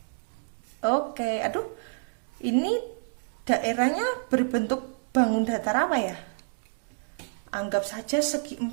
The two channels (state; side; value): silent; left; digital silence